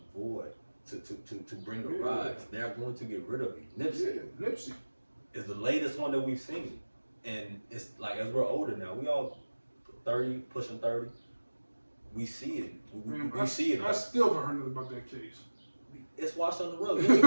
to bring a rise, they're going to get rid of you. Nipsey is the latest one that we've seen, and it's like as we're older now, we all 30, pushing 30. We see it. We see it. I still haven't heard nothing about that case. It's washed on the road. You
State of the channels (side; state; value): both; inverted; correlation -1.00